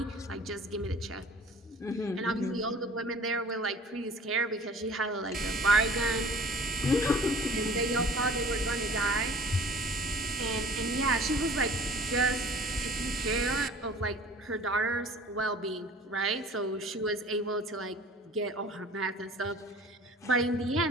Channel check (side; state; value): both; normal; correlation 0.47